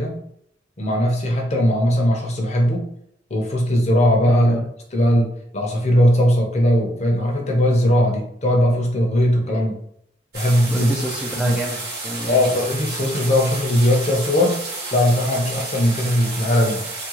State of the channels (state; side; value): normal; both; correlation 0.70